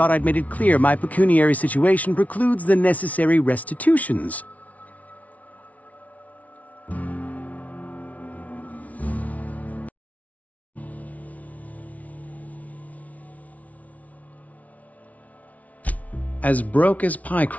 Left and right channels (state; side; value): late; right; 0.070 ms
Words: I'd made it clear my pecuniary situation precludes the necessary restitutions. As broke as pie